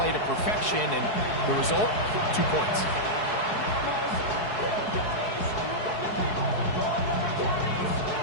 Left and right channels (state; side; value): late; right; 4.7 ms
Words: to perfection, and the result, 2 points.